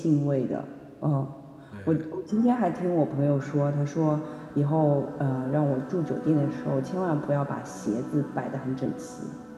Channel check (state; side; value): identical; both; correlation 1.00